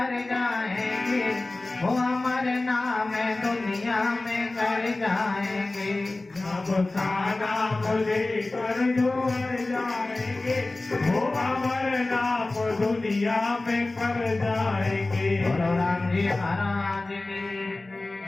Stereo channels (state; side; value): quieter; right; 3.0 dB